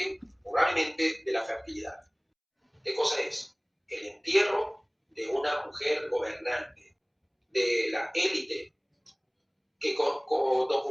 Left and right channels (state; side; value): identical; both; correlation 1.00